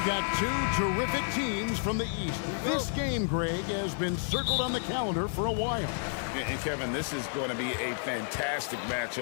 got two terrific teams from the East. This game, Greg, has been circled on the calendar for a while. And Kevin, this is going to be a fantastic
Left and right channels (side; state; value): right; silent; digital silence